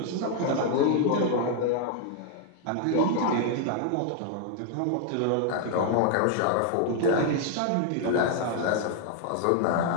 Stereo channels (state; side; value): different; both; correlation 0.00